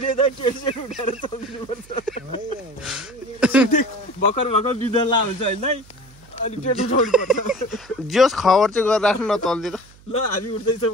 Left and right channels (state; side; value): noise; right; hum, 25 dB below the sound